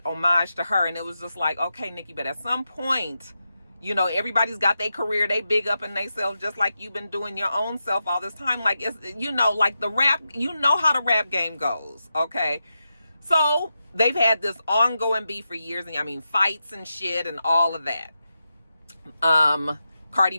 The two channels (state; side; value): inverted; both; correlation -0.89